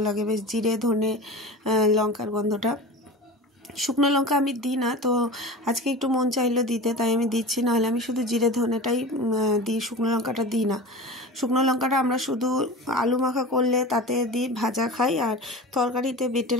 লাগে বেশ, জিরে ধনে লঙ্কার গন্ধটা। শুকনো লঙ্কা আমি দিই না, তো আজকে একটু মন চাইলো দিতে, তাই আমি দিচ্ছি। নাহলে আমি শুধু জিরে ধনেটাই দিই, শুকনো লঙ্কাটা দিই না। শুকনো লঙ্কাটা আমরা শুধু আলু মাখা করলে তাতে দিই, ভাজা খাই, আর তরকারিতে বেটে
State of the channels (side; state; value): both; normal; correlation 0.32